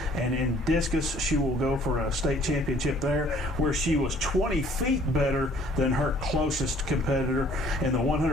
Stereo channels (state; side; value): normal; both; correlation 0.57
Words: and in discus she will go for a state championship there, where she was 20 feet better than her closest competitor. In the